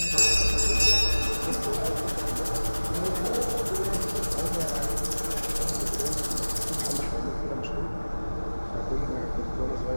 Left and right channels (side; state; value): both; inverted; correlation -1.00